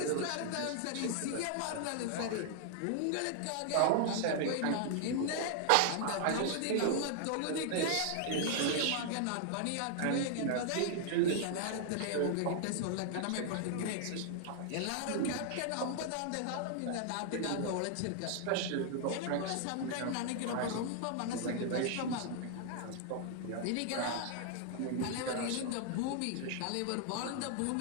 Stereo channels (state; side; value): different; both; correlation 0.00